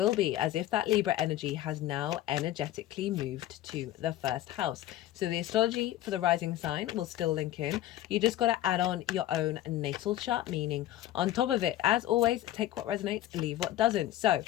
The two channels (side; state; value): right; quieter; 13.9 dB